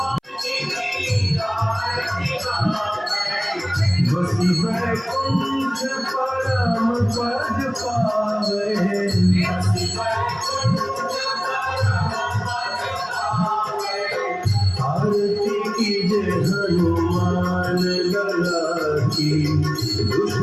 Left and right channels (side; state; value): both; identical; correlation 1.00